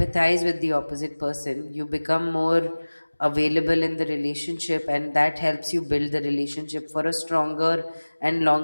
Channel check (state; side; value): inverted; both; correlation -1.00